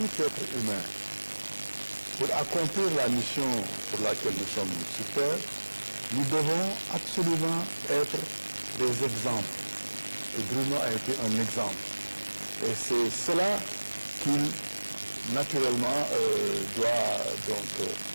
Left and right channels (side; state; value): both; inverted; correlation -1.00